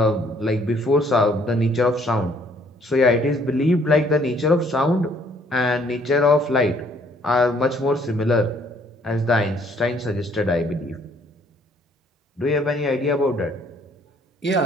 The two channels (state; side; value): normal; both; correlation 0.63